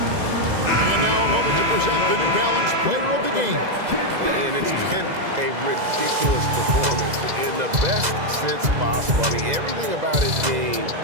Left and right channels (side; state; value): left; late; 2.0 ms